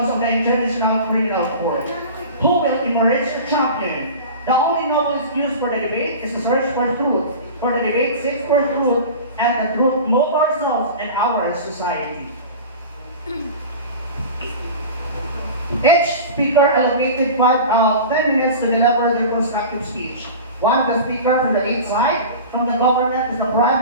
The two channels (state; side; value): inverted; both; correlation -0.34